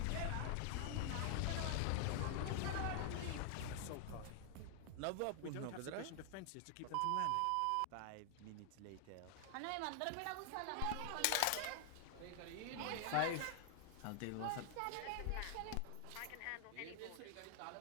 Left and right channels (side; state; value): both; different; correlation 0.00